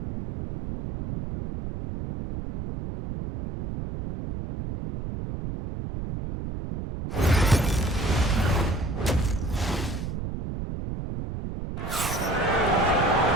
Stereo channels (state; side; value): noise; right; rumble, 6 dB below the sound